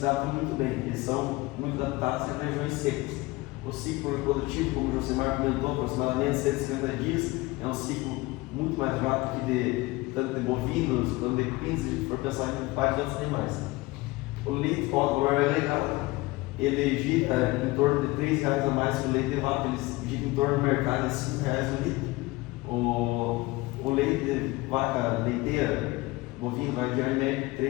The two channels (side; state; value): right; quieter; 21.3 dB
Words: adaptam muito bem, eles são muito adaptados em regiões secas. O ciclo reprodutivo, como o Josemar comentou, aproximadamente 150 dias, é um ciclo muito mais rápido que tanto de bovinos quanto de equinos, se a gente for pensar em vários outros animais. O leite com o valor agregado, ele gira em torno de R$ 3 a mais que o leite de vaca, ele gira em torno do mercado de R$ 5 o litro. O leite de vaca leiteira, bovino, vai girar em média de